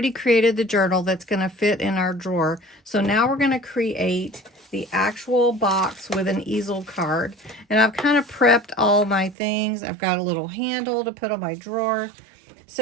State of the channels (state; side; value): drops out; left; at 9.3 s